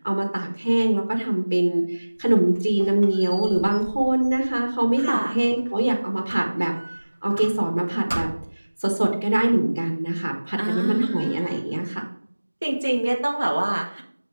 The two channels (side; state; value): both; inverted; correlation -1.00